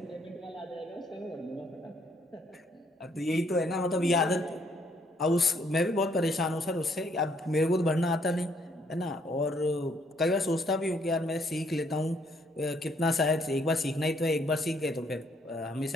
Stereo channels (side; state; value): both; normal; correlation 0.69